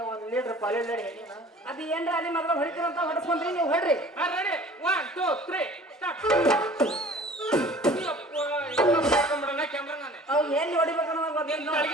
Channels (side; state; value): both; normal; correlation 0.47